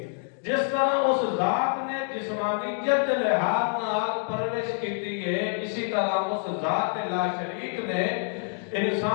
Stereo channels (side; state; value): right; silent; 57 dB below the other